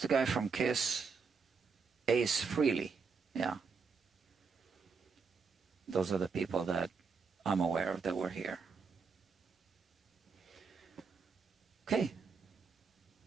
guy from Kiss? Ace Frehley. Yeah. Those are the people that I'm aware of that were here. Okay.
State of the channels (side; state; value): left; quieter; 5.3 dB